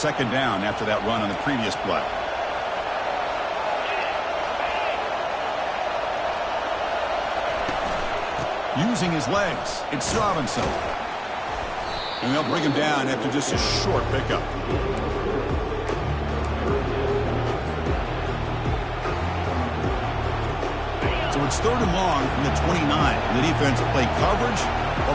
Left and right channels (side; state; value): both; identical; correlation 1.00